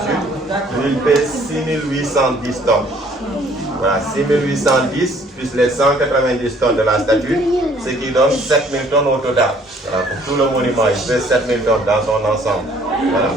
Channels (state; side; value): normal; both; correlation 0.59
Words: lui, il pèse 6810 tonnes. Voilà, 6810 plus les 190 tonnes de la statue, ce qui donne 7000 tonnes au total. Voilà, pour tout le monument, il pèse 7000 tonnes dans son ensemble. Voilà.